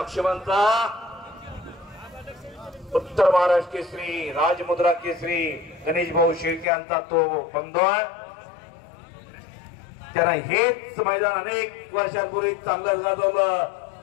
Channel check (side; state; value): right; drops out; at 6.7 s